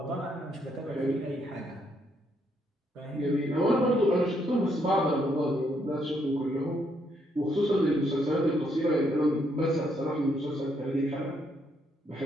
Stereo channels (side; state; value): both; normal; correlation 0.74